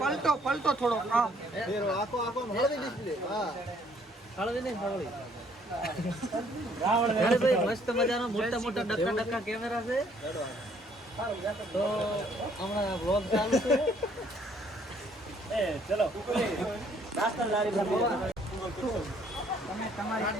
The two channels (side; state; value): both; normal; correlation 0.64